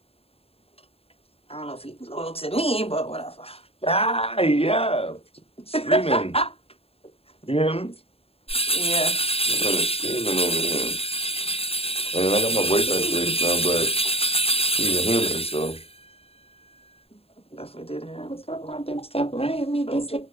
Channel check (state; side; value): late; right; 0.28 ms